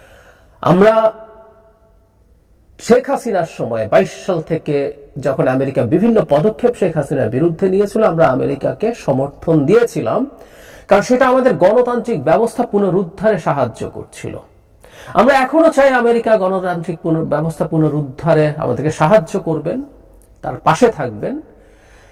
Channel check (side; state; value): both; identical; correlation 1.00